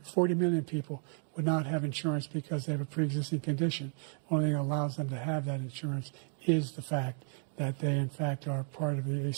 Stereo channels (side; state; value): left; silent; 56 dB below the other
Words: million people would not have insurance because they have a pre-existing condition. Only thing that allows them to have that insurance is the fact that they, in fact, are part of the